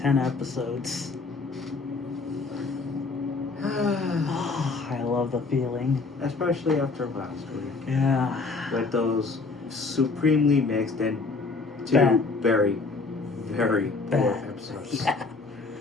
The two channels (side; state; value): right; quieter; 4.0 dB